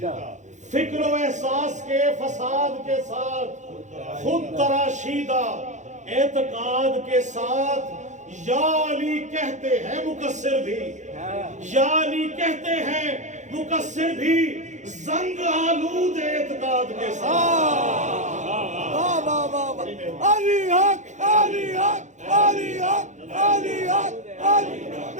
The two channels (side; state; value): left; late; 0.35 ms